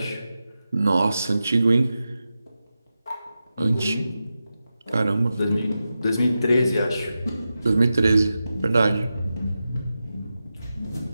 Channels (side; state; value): both; inverted; correlation -0.91